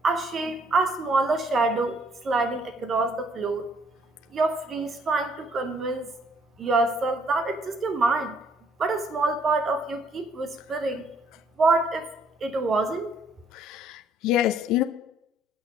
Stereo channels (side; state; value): both; normal; correlation 0.64